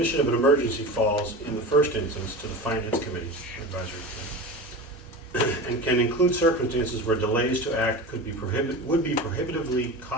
of an emergency falls in the first instance to the Finance Committee advisory committee, and can include circumstances where delays to act would be prohibitively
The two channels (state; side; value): normal; both; correlation 0.29